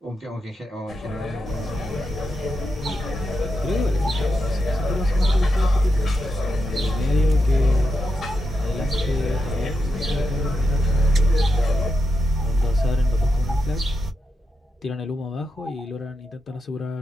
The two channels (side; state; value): both; normal; correlation 0.86